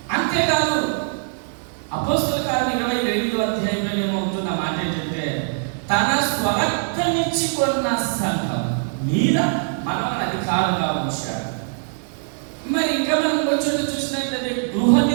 అంతేకాదు అపోస్తల కార్యం 28వ అధ్యాయంలో ఏమవుతున్న మాట ఏంటంటే, తన స్వరక్తమిచ్చి కొన్న సంఘం మీద మనల్ని అధికారంగా ఉంచాడు. మరి ఇంకా మనం వచ్చి చూసినట్లయితే గృహ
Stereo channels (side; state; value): left; silent; 59 dB below the other